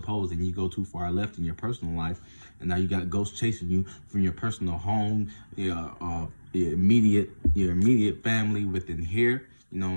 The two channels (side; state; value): both; inverted; correlation -1.00